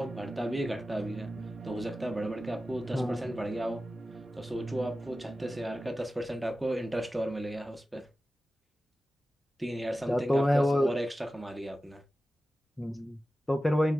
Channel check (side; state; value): both; normal; correlation 0.94